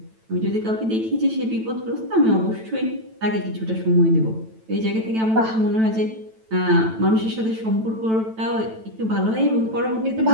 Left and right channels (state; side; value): late; left; 9.1 ms